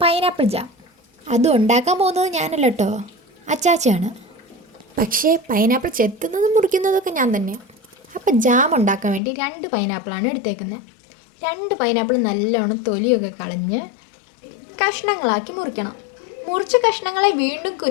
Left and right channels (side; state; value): right; drops out; at 9.2 s